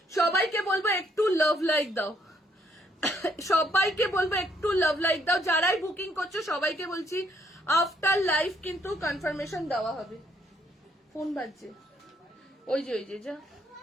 সবাইকে বলবো একটু লাভ লাইক দাও, সবাইকে বলবো একটু লাভ লাইক দাও। যারাই বুকিং করছো সবাইকে বলছি আফটার লাইফ কিন্তু কনফার্মেশন দেওয়া হবে। ফোন বাজছে, ওই যে যা,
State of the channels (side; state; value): both; normal; correlation 0.70